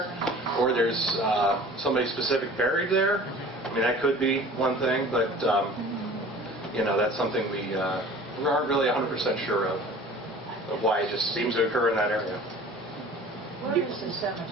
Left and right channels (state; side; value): normal; both; correlation 0.44